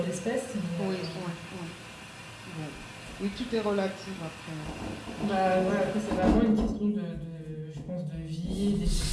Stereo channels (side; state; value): both; identical; correlation 1.00